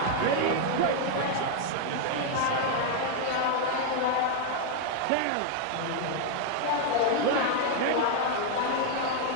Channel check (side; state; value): both; different; correlation 0.00